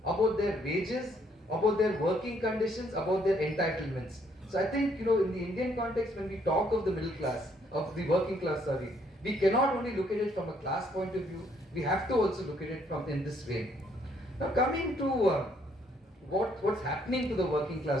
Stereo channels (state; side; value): normal; both; correlation 0.68